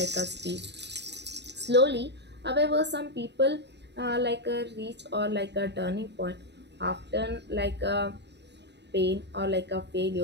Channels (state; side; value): late; left; 0.50 ms